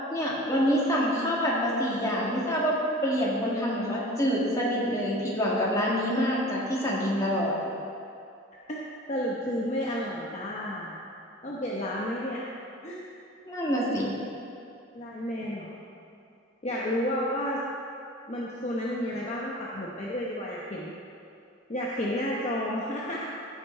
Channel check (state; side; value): normal; both; correlation 0.40